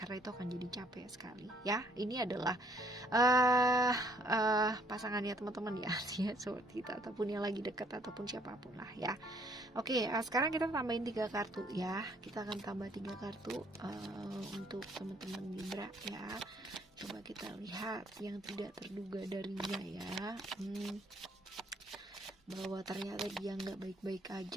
itu akan jadi capek sekali ya. Ini adalah pasangannya teman-teman ya, seperti kita, ataupun yang lagi dekat, ataupun siapapun lah ya. Oke, sekarang kita tambahin 3 kartu ya. Kita akan tambah 3 kartu untuk teman-teman Libra ya. Coba kita lihat yang tidak terduga darinya ya. Bahwa ternyata dia nggak baik-baik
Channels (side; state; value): both; normal; correlation 0.64